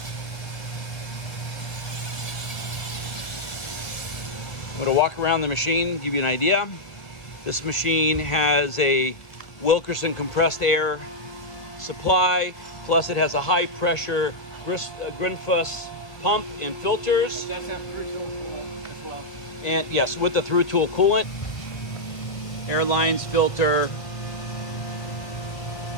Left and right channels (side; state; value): right; late; 1.7 ms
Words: I'm gonna walk around the machine, give you an idea. This machine has a Wilkerson compressed air supply, plus it has a high pressure Grinfuss pump and filters. That's have through tool coolant as well. And yes, with the through tool coolant, air lines, filter,